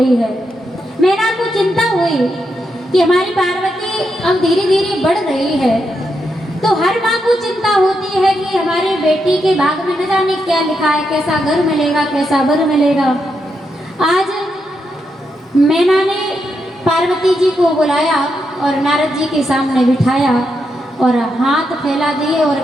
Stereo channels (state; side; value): normal; both; correlation 0.83